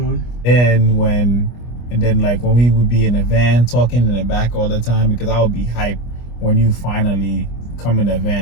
And then like when we would be in the van talking in the back all the time, because I would be hyped when you finally come in the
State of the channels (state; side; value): late; right; 25 ms